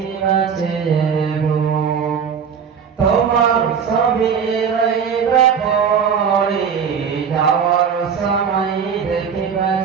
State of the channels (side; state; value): left; quieter; 6.8 dB